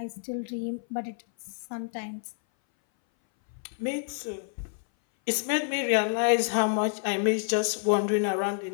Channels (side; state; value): right; silent; 58 dB below the other